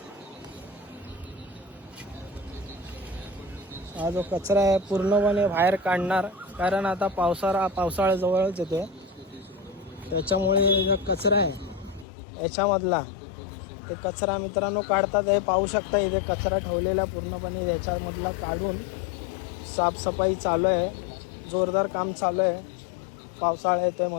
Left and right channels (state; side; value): drops out; right; at 12.1 s